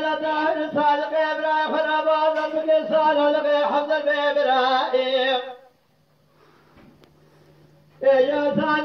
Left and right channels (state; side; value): identical; both; correlation 1.00